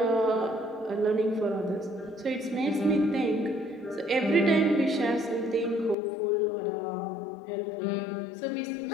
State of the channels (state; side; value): drops out; right; at 6.0 s